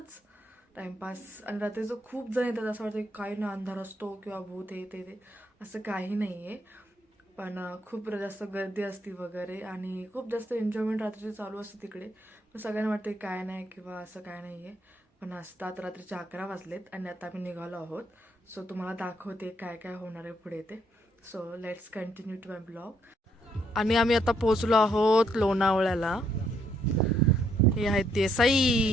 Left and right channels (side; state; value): both; normal; correlation 0.72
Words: टाइमपास. आणि रात्रीचं खूप जण येतात, असं वाटतं काही ना अंधार असतो किंवा भूत हे ते असं काही नाही आहे. पण खूप जास्त गर्दी असते वगैरे आणि खूप जास्त एन्जॉयमेंट रात्रीची चालू असते तिकडे. पण सगळ्यांना वाटते काय नाही किंवा असं काय नाही आहे. पण असतात रात्रीचे 11 वाजलेत आणि आता आम्ही निघालो आहोत. सो तुम्हाला दाखवते काय काय होणार आहे पुढे ते. So let's continue to my blog. आणि आम्ही आता पोचलो आहोत लोणावळ्याला. हे आहेत